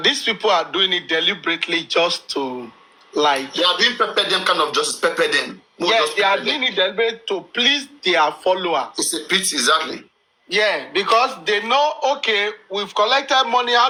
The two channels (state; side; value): identical; both; correlation 1.00